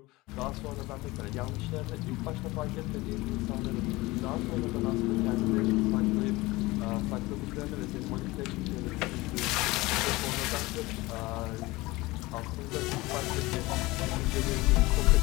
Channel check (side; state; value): right; quieter; 21.0 dB